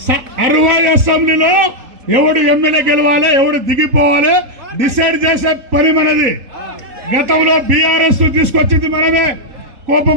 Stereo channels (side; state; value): left; late; 3.7 ms